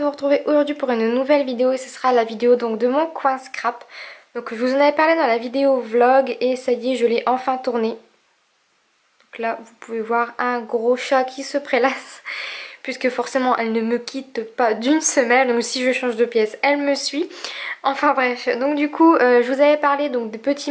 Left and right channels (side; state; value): both; identical; correlation 1.00